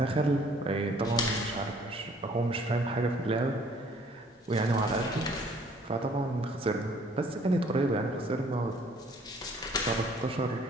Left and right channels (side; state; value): both; normal; correlation 0.58